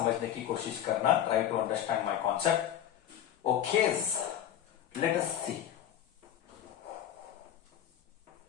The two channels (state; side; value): quieter; right; 10.9 dB